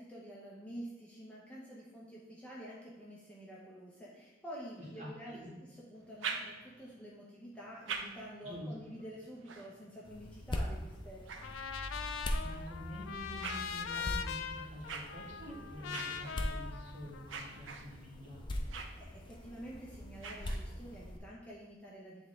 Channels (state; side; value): normal; both; correlation 0.52